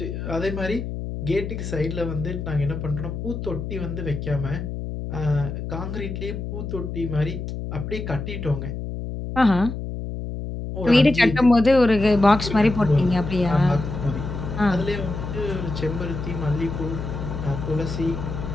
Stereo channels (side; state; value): left; noise; hum, 6 dB below the sound